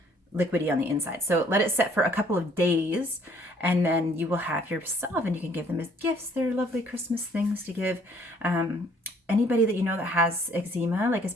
liquidy on the inside. So let it set for a couple of days, and then you will have your salve, and you can give them as gifts. They're lovely Christmas things to give. Anybody that you know that has eczema, like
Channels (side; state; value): both; normal; correlation 0.61